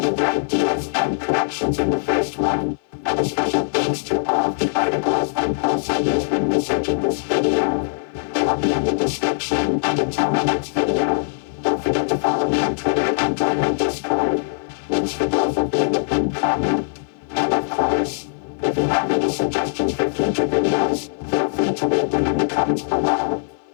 their ideas and corrections in the first one. And a special thanks to all of the articles and posts I used when researching this video. They will be in the description, and until my next video, don't forget to follow me on Twitter and join my Discord. Links for those will be in the pinned comment. And of course, if you have any suggestions for future videos, feel free to leave them in the comments below.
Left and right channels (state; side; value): silent; right; 57 dB below the other